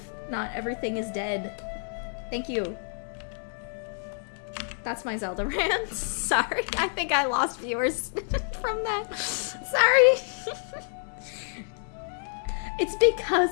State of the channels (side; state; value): right; silent; digital silence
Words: Not everything is dead. Thank you. That's my Zelda rant. Sorry, I think I lost viewers from that. Sorry. It's